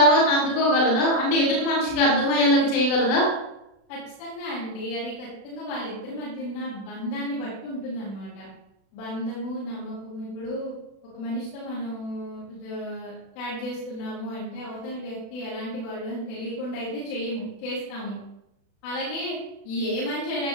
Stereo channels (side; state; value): right; late; 36 ms